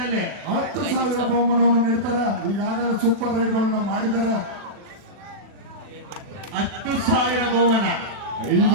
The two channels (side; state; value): left; late; 40 ms